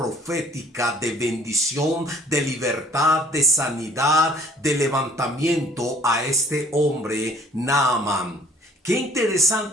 de bendición, de libertad, de sanidad, de levantamiento a este hombre Naamán. Qué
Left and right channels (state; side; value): normal; both; correlation 0.54